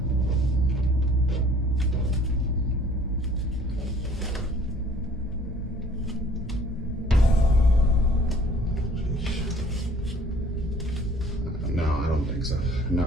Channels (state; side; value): normal; both; correlation 0.55